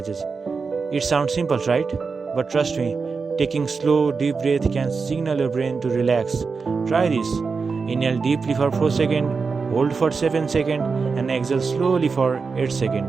It sounds simple, right? But trust me, taking slow, deep breath can signal your brain to relax. Try this. Inhale deeply for 4 seconds, hold for 7 seconds, and exhale slowly for 8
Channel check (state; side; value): quieter; left; 4.9 dB